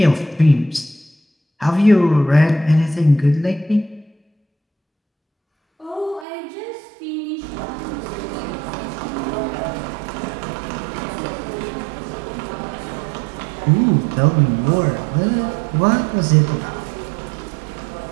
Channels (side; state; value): left; drops out; at 6.2 s